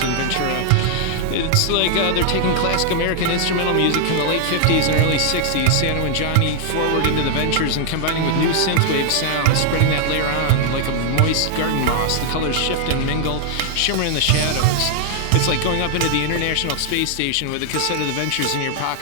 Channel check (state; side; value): different; both; correlation 0.00